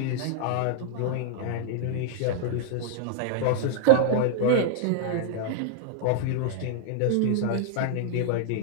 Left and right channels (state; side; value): different; both; correlation -0.01